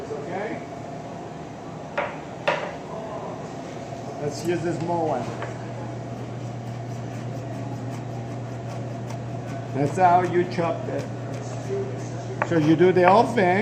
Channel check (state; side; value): identical; both; correlation 1.00